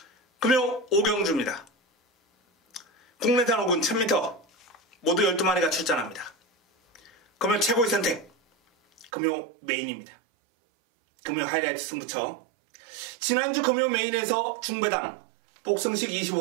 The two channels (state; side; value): drops out; left; at 9.1 s